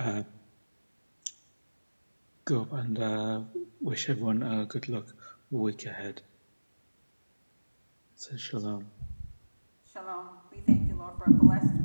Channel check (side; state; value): both; inverted; correlation -1.00